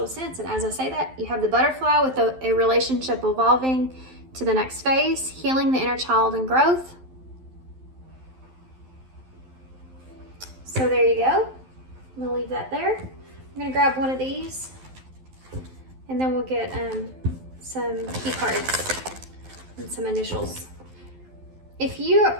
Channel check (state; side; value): late; left; 12 ms